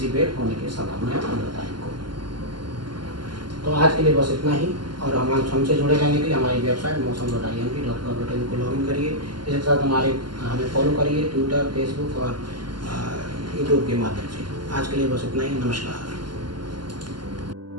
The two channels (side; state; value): left; late; 0.71 ms